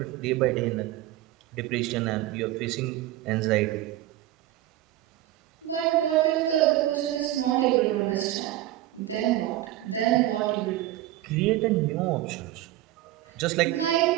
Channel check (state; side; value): quieter; left; 14.9 dB